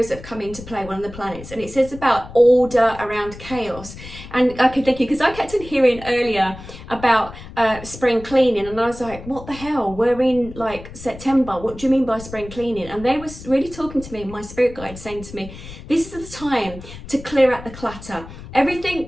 that have come into play, one of the planets. And it says about order around chaos. And I could thank you, because I kept on hearing earlier about spring cleaning, and I was like, what the hell, we're in like September, what do you mean by spring cleaning? And they was really talking to me, my spirit guide saying to me, this is the time to clear out the clutter. Everything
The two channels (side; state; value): left; noise; rumble, 15 dB below the sound